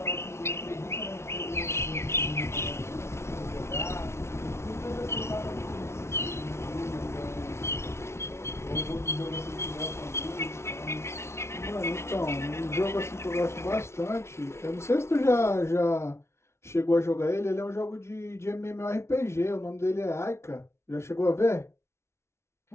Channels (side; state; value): right; late; 0.13 ms